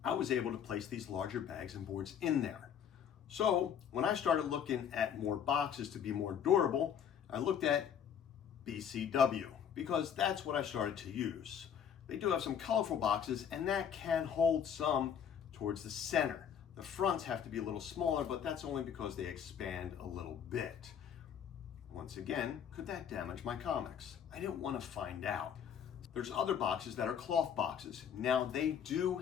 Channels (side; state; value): right; quieter; 8.3 dB